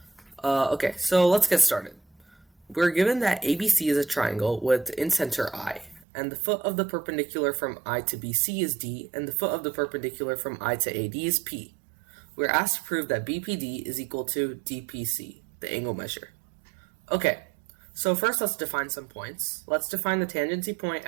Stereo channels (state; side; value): drops out; left; at 6.1 s